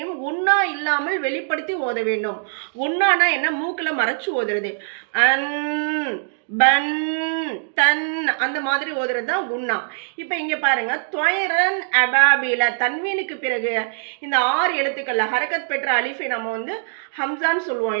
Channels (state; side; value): silent; left; digital silence